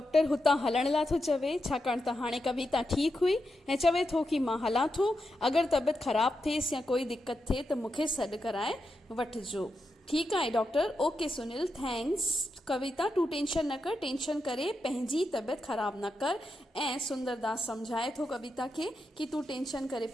हुतां हलण लाइ थो चवे, छाकाणि त हाणे कविता ठीकु हुई ऐं चवे थो कि मां हलां थो। अगरि तबियत ख़राबु थिएसि या कोई दिक़त थिए त मूंखे सॾु कराए वठिजो। ठीकु आहे डॉक्टर, ओके सुनील, थैंक्स। कविता तूं टेंशन न कर, टेंशन करे पंहिंजी तबियत ख़राबु न कर। ऐं सुंदरदास सम्झाए थो कविता खे कि तूं टेंशन करे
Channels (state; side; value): normal; both; correlation 0.86